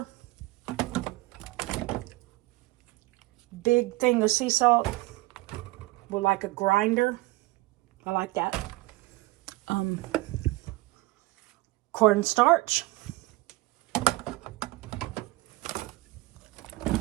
Big thing of sea salt with like a grinder. I like that. Cornstarch.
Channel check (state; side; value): quieter; left; 20.8 dB